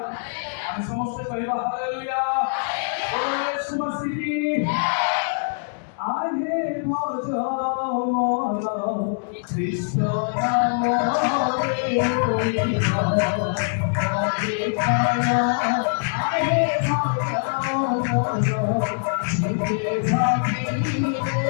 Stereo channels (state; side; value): silent; right; digital silence